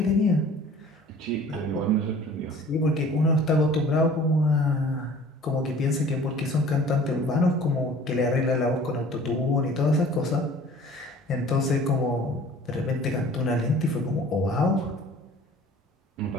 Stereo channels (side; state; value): both; normal; correlation 0.48